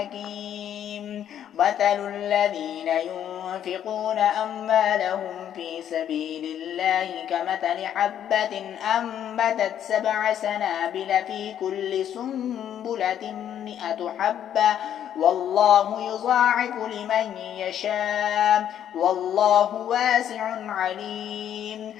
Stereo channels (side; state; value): right; quieter; 10.1 dB